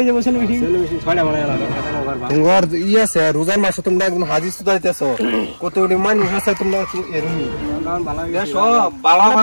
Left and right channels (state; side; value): inverted; both; correlation -1.00